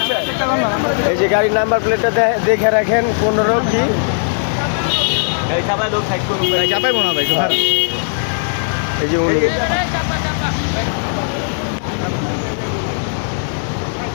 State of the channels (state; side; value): silent; right; 56 dB below the other